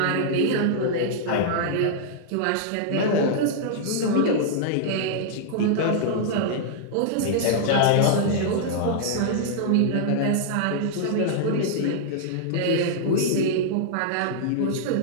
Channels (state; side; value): different; both; correlation -0.01